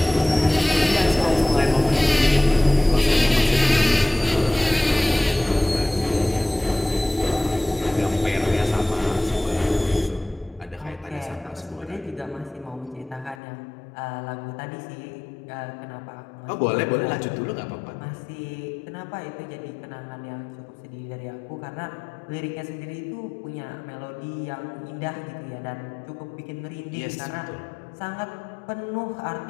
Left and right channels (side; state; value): right; drops out; at 13.4 s